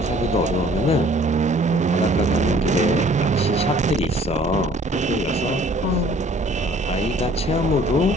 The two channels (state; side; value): normal; both; correlation 0.56